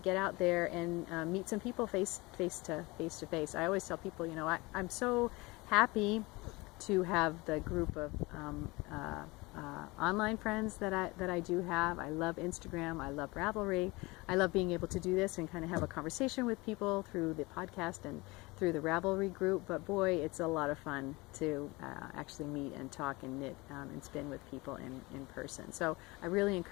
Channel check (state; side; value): quieter; right; 23.5 dB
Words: get out there and meet some people face to face. I always tell people, you know, I'm so happy to have the group of online friends that I do have. I love Instagram, I love Ravelry, I love being able to do this and kind of have a conversation with people through the podcast and through the Ravelry group, but boy, it's a lot of fun to actually meet and talk and knit and spin with people in person. So I really